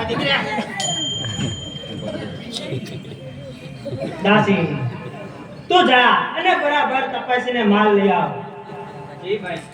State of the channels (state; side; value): identical; both; correlation 1.00